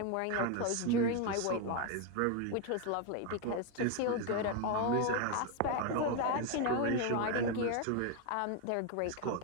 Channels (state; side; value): different; both; correlation 0.01